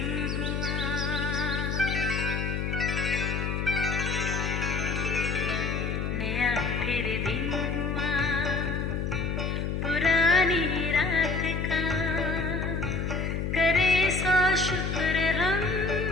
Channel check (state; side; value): noise; left; hum, 1 dB below the sound